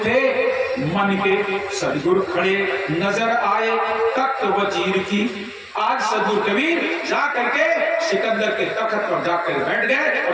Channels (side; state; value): both; identical; correlation 1.00